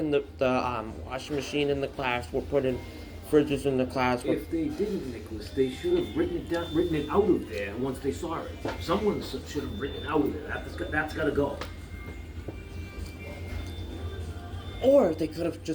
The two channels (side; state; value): both; identical; correlation 1.00